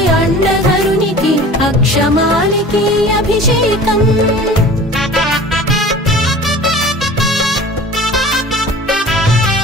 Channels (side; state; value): both; normal; correlation 0.42